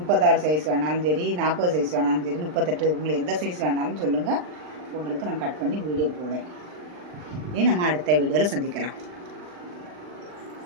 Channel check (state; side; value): late; left; 39 ms